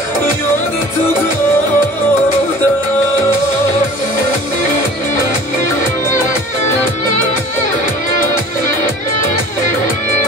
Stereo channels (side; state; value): both; normal; correlation 0.45